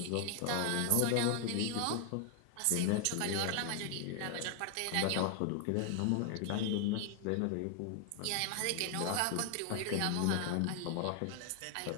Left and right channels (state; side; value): different; both; correlation 0.00